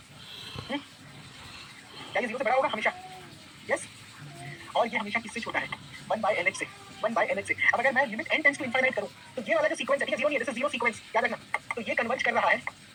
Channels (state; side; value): identical; both; correlation 1.00